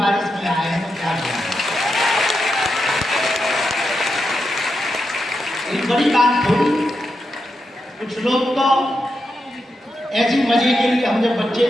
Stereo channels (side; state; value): both; normal; correlation 0.86